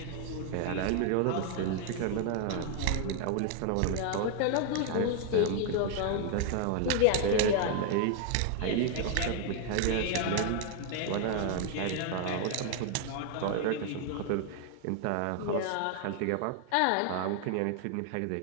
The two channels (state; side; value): different; both; correlation 0.00